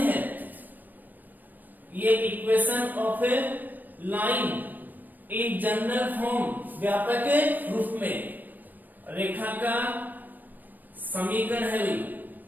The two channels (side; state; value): left; late; 0.088 ms